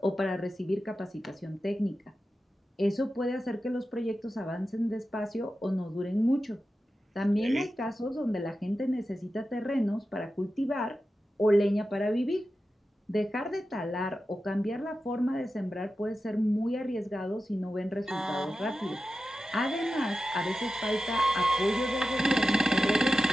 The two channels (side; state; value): both; normal; correlation 0.92